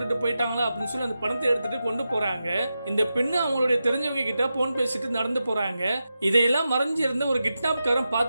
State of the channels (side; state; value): both; inverted; correlation -0.90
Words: போயிட்டாங்களா அப்படின்னு சொல்லி அந்த பணத்தை எடுத்துட்டு கொண்டு போறாங்க. இந்த பெண்ணு அவங்களுடைய தெரிஞ்சவங்க கிட்ட போன் பேசிட்டு நடந்து போறாங்க. இதையெல்லாம் மறைஞ்சு இருந்த ஒரு கிட்னாப்காரன்